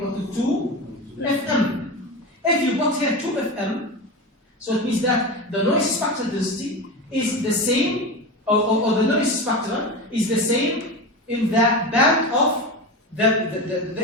to 2 Fm. If you put here 2 Fm, so it means that the noise spectral density is the same, or the noise spectrum is the same in the band of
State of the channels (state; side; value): normal; both; correlation 0.23